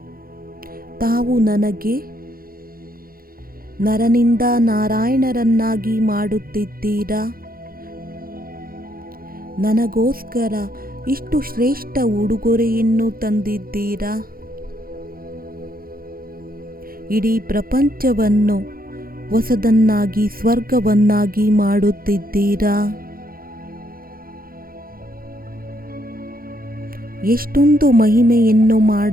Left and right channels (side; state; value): left; late; 0.42 ms